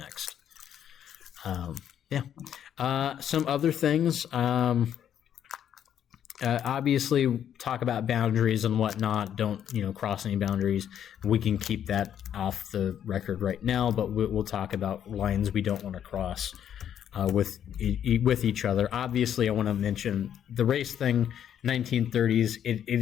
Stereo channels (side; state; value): right; quieter; 9.6 dB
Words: Some other things. Obviously, talk about boundaries and whatnot. Don't cross any boundaries. We can keep that off the record right now, but we'll talk about lines we don't want to cross with each other. Obviously, I want to mention the race thing. 1930s.